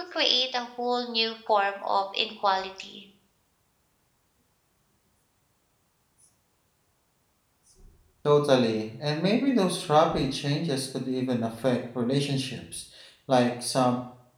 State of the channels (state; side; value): identical; both; correlation 1.00